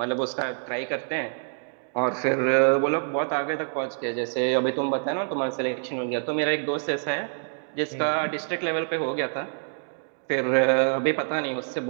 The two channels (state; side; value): silent; left; digital silence